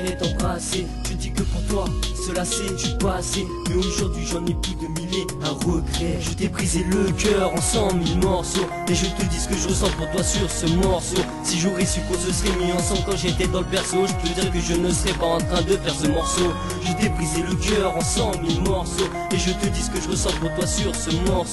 et t'embrasser. Je dis que pour toi, cela c'est du passé. Mais aujourd'hui j'en ai plus de mille et un regret. Je t'ai brisé le cœur en 100 000 morceaux. Et je te dis ce que je ressens pour toi sur ce morceau. Si j'aurais su qu'on se serait mis ensemble quand j'étais dans le berceau, je peux dire que je ne serais pas en train de faire ce morceau. Je t'ai brisé le cœur en 100 000 morceaux. Et je te dis ce que je ressens pour toi sur ce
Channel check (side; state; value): both; identical; correlation 1.00